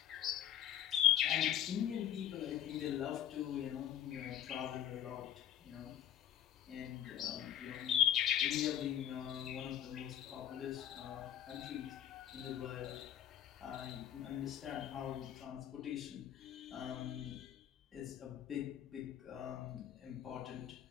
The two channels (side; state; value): right; quieter; 10.9 dB